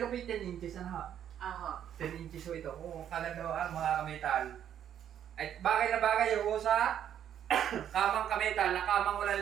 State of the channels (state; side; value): quieter; left; 9.8 dB